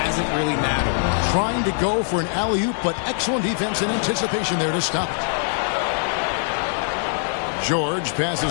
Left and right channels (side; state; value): right; silent; 64 dB below the other